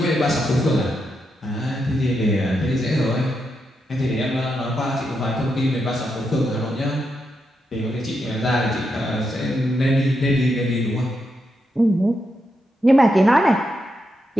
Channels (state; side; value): normal; both; correlation 0.83